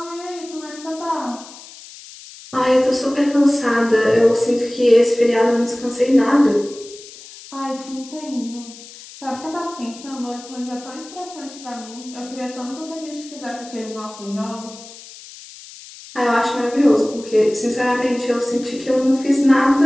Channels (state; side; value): noise; left; hiss, 18 dB below the sound